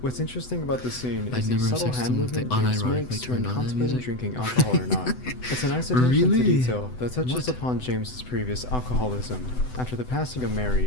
What's interesting about this scene I'd is never the have subtle sexed hand them if they movement James unironically makes when turned on that contemplating music. drinking alcohol or not. It's a nice attention to Really? detail that touches What? upon James's previous alcoholism after the passing of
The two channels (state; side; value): late; right; 8.0 ms